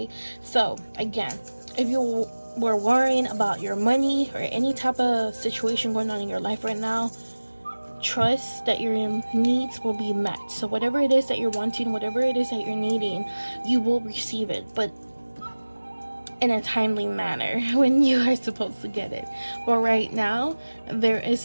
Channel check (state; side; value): inverted; both; correlation -1.00